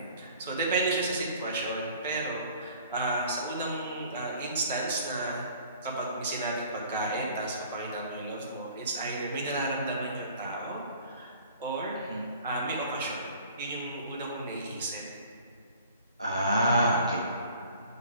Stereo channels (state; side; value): inverted; both; correlation -0.50